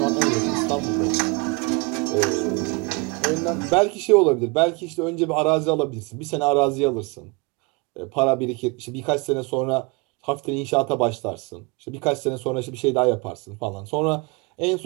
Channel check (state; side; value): quieter; left; 28.8 dB